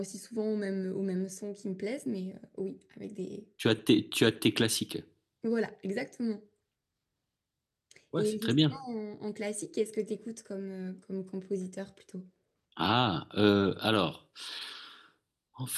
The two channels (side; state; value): both; identical; correlation 1.00